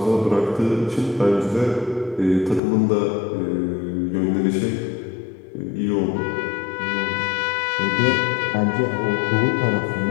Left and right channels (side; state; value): right; drops out; at 2.6 s